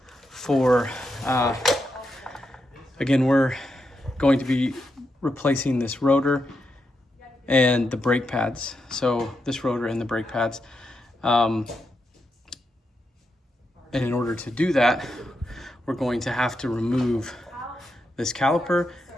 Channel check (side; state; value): both; normal; correlation 0.84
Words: again, we're going to be replacing this rotor and the brake pads. So this rotor and the brake pads. And in order to do that, we're going to have to remove this caliper,